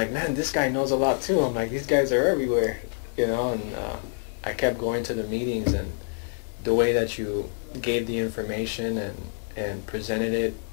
man, this guy knows a lot too. I'm like, these guys are everywhere, you know? And I kept going to the meetings, and the way that you gave the information and presented it,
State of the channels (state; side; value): silent; right; 60 dB below the other